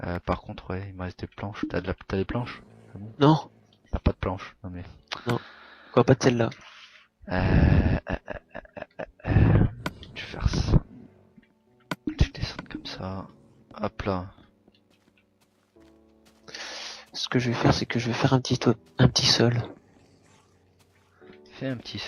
Par contre, ouais, il me reste des planches. T'as des planches? Ah bon? Non, T'as pas de planches? Non mais... quoi, pas de celle-là. Euh, euh, euh, je vais faire ça. Je vais descendre comme ça. Hop là. Ce que je vais faire, c'est que je vais faire un petit sol. Fais un petit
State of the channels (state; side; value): identical; both; correlation 1.00